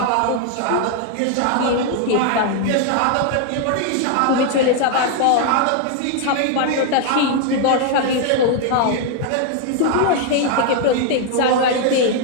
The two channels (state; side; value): different; both; correlation 0.00